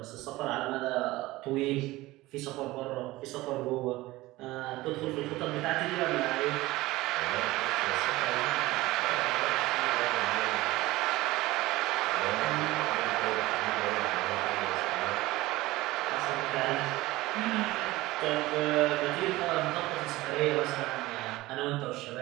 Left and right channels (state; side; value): quieter; left; 18.7 dB